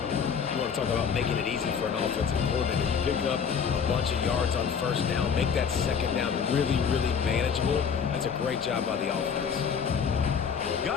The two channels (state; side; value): quieter; right; 6.7 dB